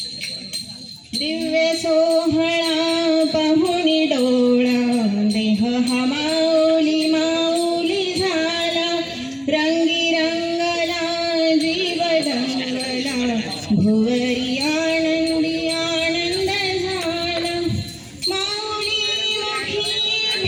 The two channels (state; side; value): identical; both; correlation 1.00